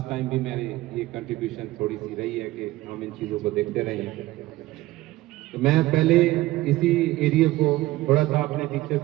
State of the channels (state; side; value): quieter; left; 17.5 dB